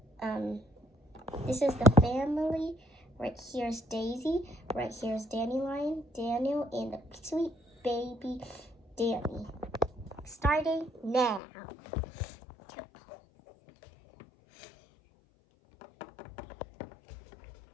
This is the family. Right here's Daisy. Right here's Dandelion, Daniel, and the sweet baby Danny. Starting now.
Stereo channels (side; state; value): right; drops out; at 11.4 s